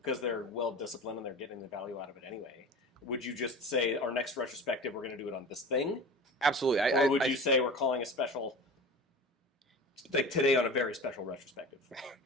they're well-disciplined and they're getting the value out of it anyway, would you just say, our next retrospective, we're going to do it on this thing? Absolutely. Or would you say we're calling a special, like today on a very special retrospective?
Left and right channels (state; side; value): normal; both; correlation 0.34